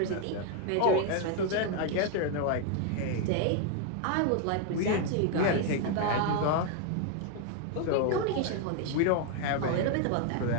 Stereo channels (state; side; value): different; both; correlation 0.01